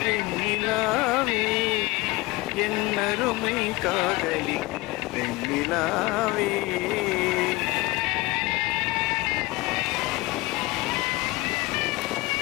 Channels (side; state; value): right; quieter; 22.2 dB